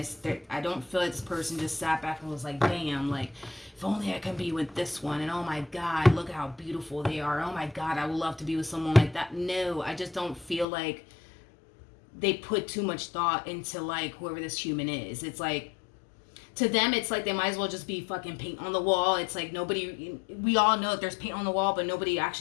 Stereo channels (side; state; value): right; drops out; at 10.7 s